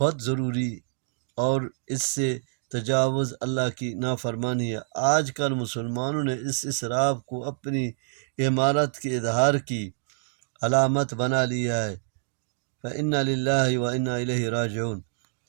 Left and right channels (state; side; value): silent; left; digital silence